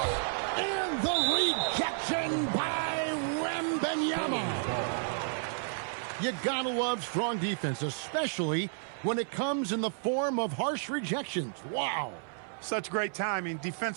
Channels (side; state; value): left; silent; 57 dB below the other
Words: And the rejection by Wembanyama. You gotta love strong defense, especially when it comes in the form of harsh rejections. Wow. Such great timing,